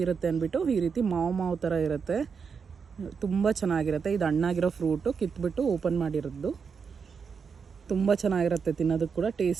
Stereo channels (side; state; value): left; quieter; 6.0 dB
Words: ಇರುತ್ತೆ ಅಂದ್ಬಿಟ್ಟು, ಈ ರೀತಿ ಮಾವು ಥರ ಇರುತ್ತೆ, ತುಂಬ ಚೆನ್ನಾಗಿರುತ್ತೆ. ಇದು ಹಣ್ಣಾಗಿರೋ ಫ್ರೂಟು ಕಿತ್ಬಿಟ್ಟು ಓಪನ್ ಮಾಡಿರೋದು. ತುಂಬ ಚೆನ್ನಾಗಿರುತ್ತೆ, ತಿನ್ನೋದಕ್ಕೆ ಕೂಡ